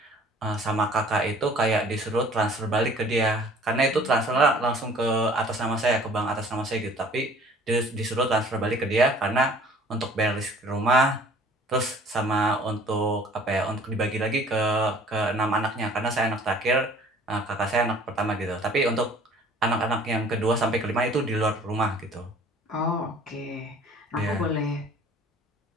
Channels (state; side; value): normal; both; correlation 0.51